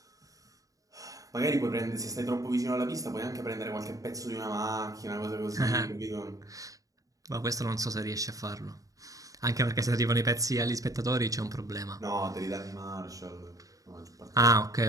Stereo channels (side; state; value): left; late; 0.17 ms